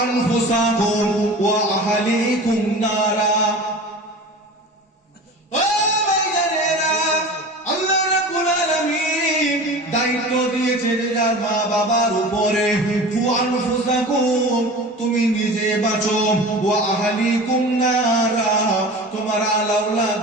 আনফুসাকুম ওয়া আহলিকুম নারা। ও ভাইজানেরা, আল্লাহ রাব্বুল আলামিন দায়িত্ব দিয়েছে যার মা বাবার উপরে। কু আনফুসাকুম, তুমি নিজে বাঁচো, ওয়া আহলিকুম নারা, তোমার আলাউলাদ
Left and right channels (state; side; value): normal; both; correlation 0.35